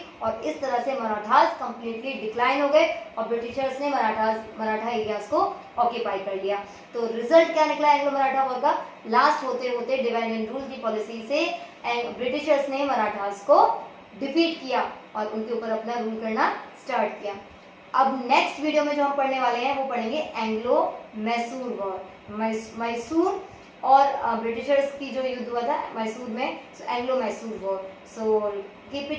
और इस तरह से मराठास कंप्लीटली डिक्लाइन हो गए और ब्रिटिशर्स ने मराठा एरियाज को ऑक्यूपाई कर लिया। तो रिजल्ट क्या निकला एंग्लो मराठा वॉर का, लास्ट होते होते डिवाइड एंड रूल की पॉलिसी से ब्रिटिशर्स ने मराठास को डिफीट किया और उनके ऊपर अपना रूल करना स्टार्ट किया। अब नेक्स्ट वीडियो में जो हम पढ़ने वाले हैं वो पढ़ेंगे एंग्लो मैसूर वॉर, मैसूर और ब्रिटिशर्स की जो युद्ध हुआ था मैसूर में, Anglo Mysore war. So keep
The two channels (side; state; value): both; identical; correlation 1.00